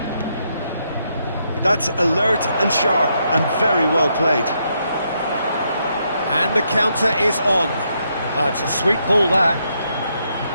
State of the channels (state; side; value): inverted; both; correlation -0.77